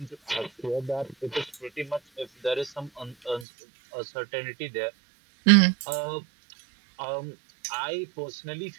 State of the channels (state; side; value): drops out; left; at 3.5 s